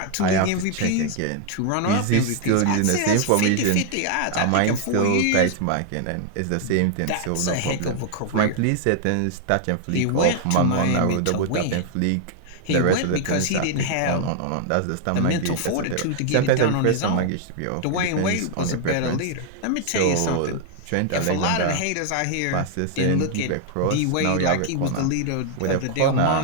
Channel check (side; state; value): both; different; correlation 0.00